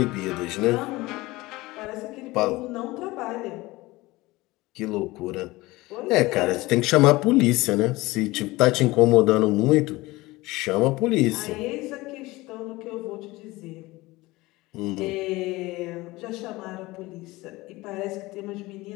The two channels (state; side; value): quieter; right; 20.4 dB